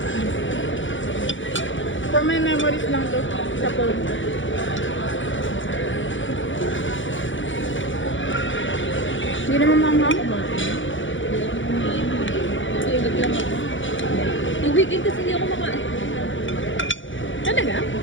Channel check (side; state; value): right; late; 0.56 ms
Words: For my memories lang to sa phone. Hindi naman manghang. Tulog lang ako. Yung weekend kasi hindi ako makain. Talaga?